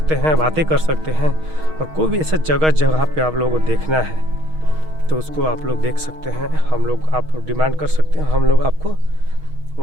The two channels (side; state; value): left; late; 6.4 ms